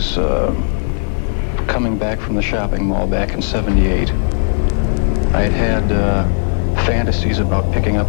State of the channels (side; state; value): right; silent; 56 dB below the other